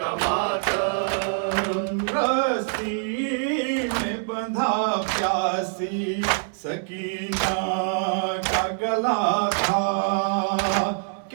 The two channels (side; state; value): left; silent; digital silence